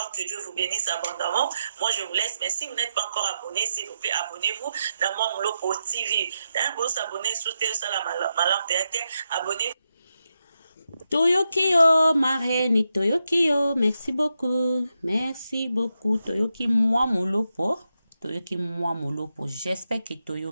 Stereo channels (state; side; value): inverted; both; correlation -0.85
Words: que Dieu vous bénisse abondamment. Moi, je vous laisse. Mais si vous n'êtes pas encore abonné, s'il vous plaît, abonnez-vous dans mon Molopo TV. Vous vous abonnez sur ça, la malampe. Abonnez-vous. Toyoki yo, marraine, Toyoki yo, merci beaucoup, Toyoki moi Molopo, j'espère que